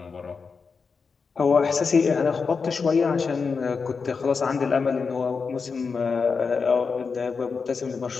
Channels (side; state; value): right; quieter; 5.1 dB